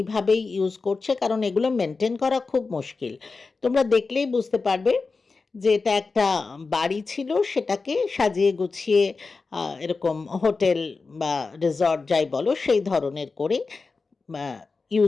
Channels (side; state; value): right; quieter; 4.2 dB